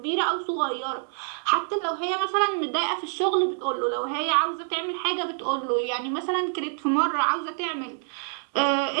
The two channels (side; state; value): left; silent; digital silence